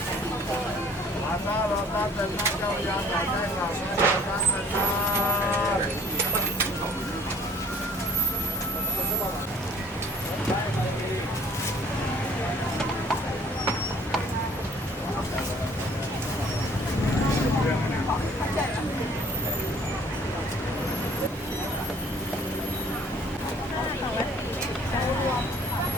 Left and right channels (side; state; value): both; normal; correlation 0.55